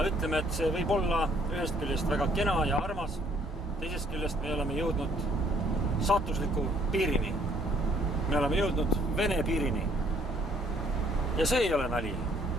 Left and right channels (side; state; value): both; normal; correlation 0.63